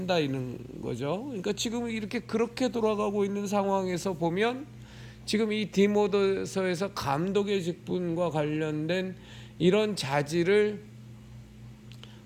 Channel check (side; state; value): both; identical; correlation 1.00